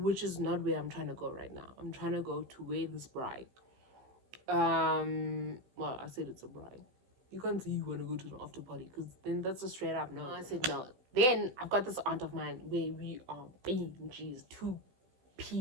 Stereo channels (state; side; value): late; left; 16 ms